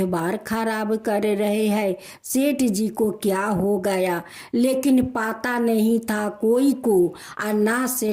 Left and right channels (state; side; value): identical; both; correlation 1.00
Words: खराब कर रहे हैं, सेठ जी को क्या हो गया। लेकिन पता नहीं था कोई को और ना